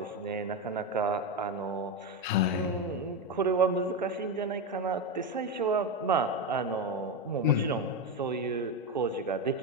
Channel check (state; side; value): normal; both; correlation 0.12